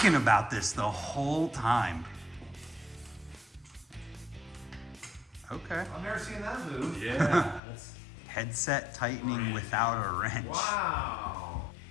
about this the whole time. Okay. I've never seen that move. Yeah, that's Headset tightening without a wrench. Wow.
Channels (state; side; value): drops out; right; at 7.6 s